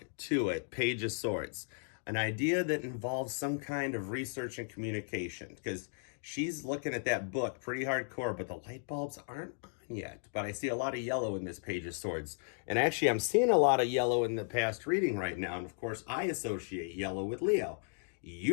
to it, Page of Swords. An idea that involves some kind of research and communication, because she's looking at that book pretty hardcore, but the light bulbs aren't on yet. But I see a lot of yellow in this Page of Swords. And actually, I'm seeing a lot of yellow in the past reading right now. And of course, I associate yellow with Leo.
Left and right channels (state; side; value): silent; right; digital silence